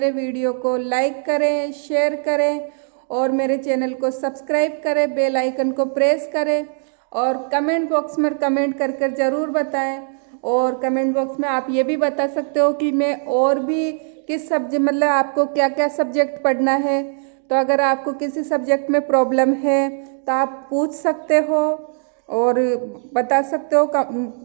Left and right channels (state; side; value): silent; left; 64 dB below the other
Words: वीडियो को लाइक करें, शेयर करें और मेरे चैनल को सब्सक्राइब करें, बेल आइकन को प्रेस करें और कमेंट बॉक्स में कमेंट कर कर ज़रूर बताएं। और कमेंट बॉक्स में आप ये भी बता सकते हो कि मैं और भी किस सब्जेक्ट, मतलब आपको क्या क्या सब्जेक्ट पढ़ना है। तो अगर आपको किसी सब्जेक्ट में प्रॉब्लम है तो आप पूछ सकते हो और बता सकते हो